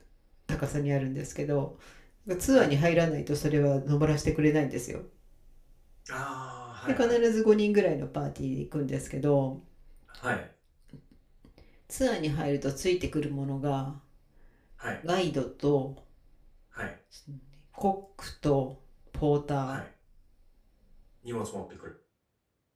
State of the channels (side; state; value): both; identical; correlation 1.00